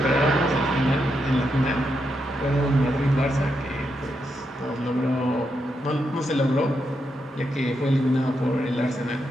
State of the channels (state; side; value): normal; both; correlation 0.83